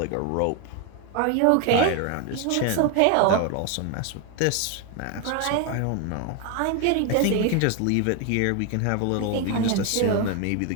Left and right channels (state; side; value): different; both; correlation 0.01